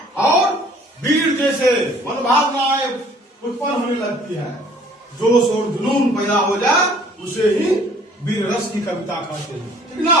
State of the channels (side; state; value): both; normal; correlation 0.56